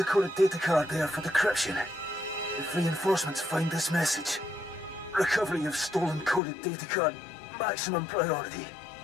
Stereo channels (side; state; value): right; drops out; at 6.4 s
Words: coded data card there for decryption. If reinforcements find this message, recovery of stolen coded data card, maximum priority.